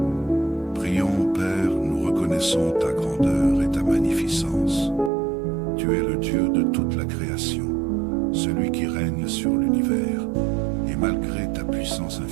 Prions, Père, nous reconnaissons ta grandeur et ta magnificence. Tu es le Dieu de toute la création, celui qui règne sur l'univers. Et malgré ta puissance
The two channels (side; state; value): left; drops out; at 5.1 s